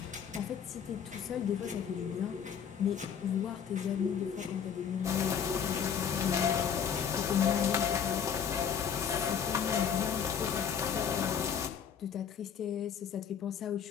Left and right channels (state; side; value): quieter; right; 7.8 dB